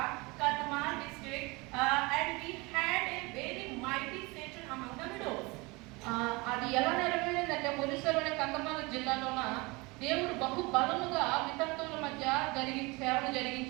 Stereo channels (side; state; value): left; quieter; 25.3 dB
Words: Kadma district, and we had a very mighty session among the widows. అది ఎలా నెరవేరిందంటే, ఒరిస్సాలోని కందమాల జిల్లాలోన దేవుడు బహు బలముగా వితంతువుల మధ్య సేవను